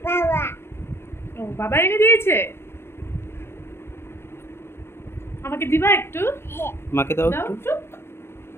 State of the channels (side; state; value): right; late; 0.12 ms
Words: ও বাবা এনে দিয়েছে। আমাকে দিবা একটু? মাকে দাও একটু।